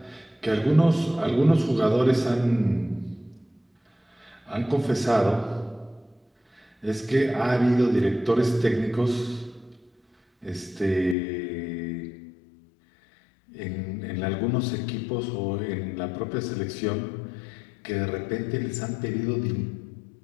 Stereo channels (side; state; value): right; drops out; at 11.2 s